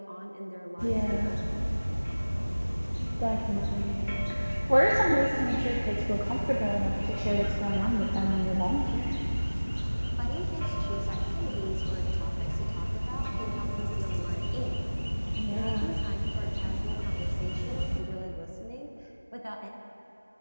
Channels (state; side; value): inverted; both; correlation -1.00